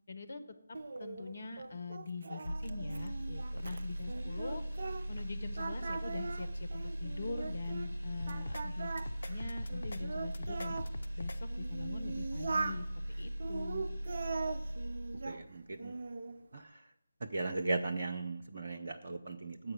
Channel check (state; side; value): inverted; both; correlation -0.92